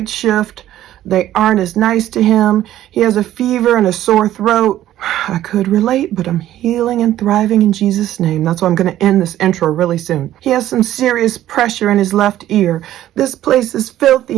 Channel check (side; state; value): left; quieter; 13.1 dB